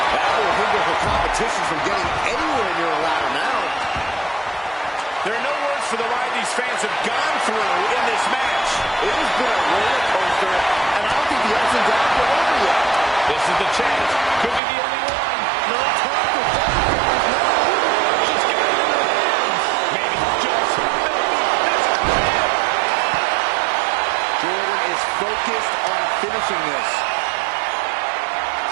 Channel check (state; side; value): drops out; left; at 14.6 s